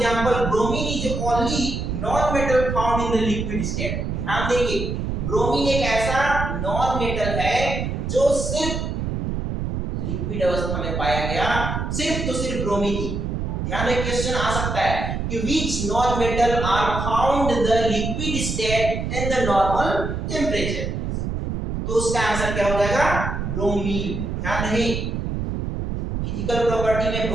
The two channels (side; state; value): right; noise; rumble, 3 dB below the sound